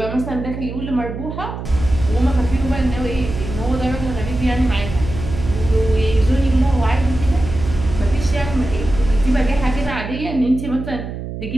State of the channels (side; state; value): right; noise; hum, 8 dB below the sound